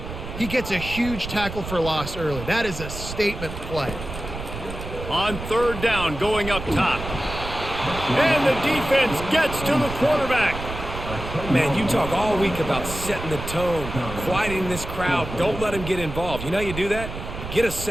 he gets a huge tackle for loss early. That is a statement play. On 3rd down, going up top. And the defense gets to the quarterback. Man, you talk all week about setting the tone, quieting this crowd. Don't let them get involved. You know how you do that? Get a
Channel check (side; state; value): right; noise; rumble, 9 dB below the sound